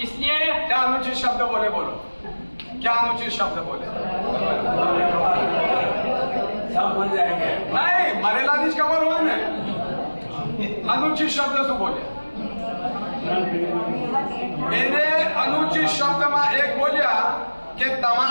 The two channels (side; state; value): both; inverted; correlation -1.00